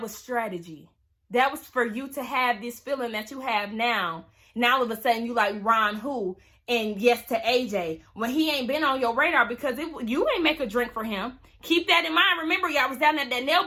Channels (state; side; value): identical; both; correlation 1.00